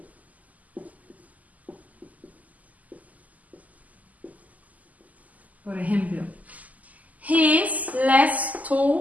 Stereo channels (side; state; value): left; late; 0.077 ms